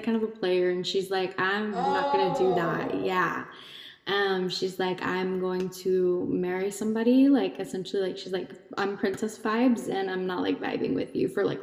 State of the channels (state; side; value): identical; both; correlation 1.00